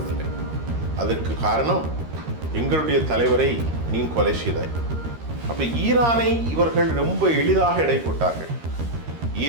அதற்கு காரணம் எங்களுடைய தலைவரை நீ கொலை செய்தாய். அப்போ ஈரானை இவர்கள் ரொம்ப எளிதாக எடை போட்டார்கள்.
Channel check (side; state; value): left; late; 13 ms